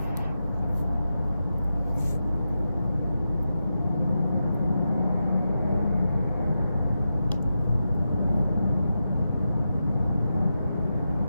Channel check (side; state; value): both; inverted; correlation -0.88